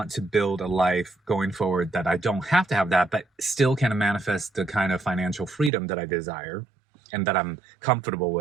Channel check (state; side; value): drops out; left; at 5.7 s